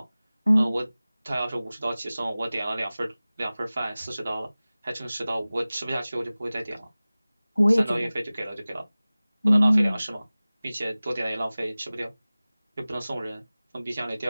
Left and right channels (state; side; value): inverted; both; correlation -0.98